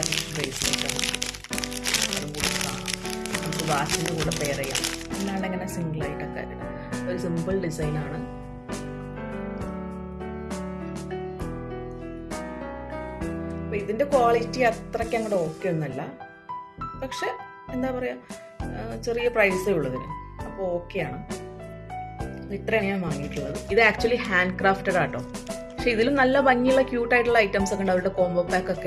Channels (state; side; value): identical; both; correlation 1.00